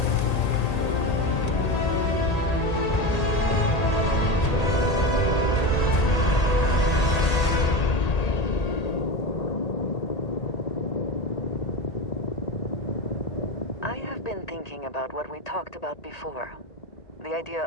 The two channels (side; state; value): right; late; 1.8 ms